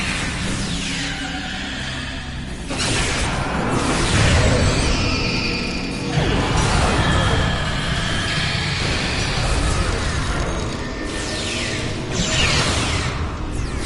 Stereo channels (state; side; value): identical; both; correlation 1.00